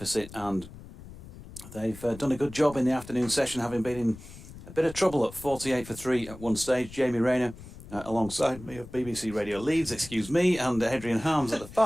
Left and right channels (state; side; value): noise; left; rumble, 16 dB below the sound